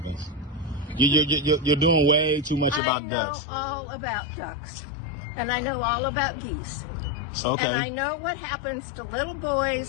You're doing way too much about ducks. I know all about ducks, and I know all about geese. Okay. And I know what happens to little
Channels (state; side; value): drops out; right; at 2.8 s